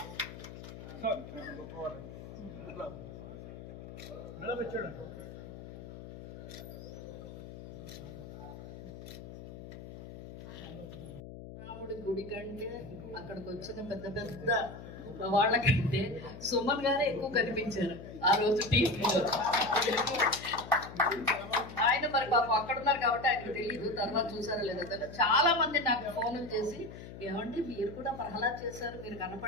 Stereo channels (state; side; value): noise; left; hum, 13 dB below the sound